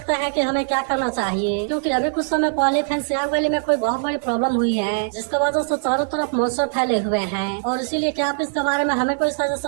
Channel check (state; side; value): silent; left; digital silence